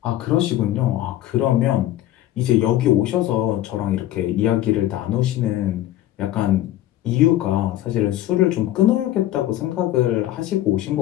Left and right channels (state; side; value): quieter; right; 13.8 dB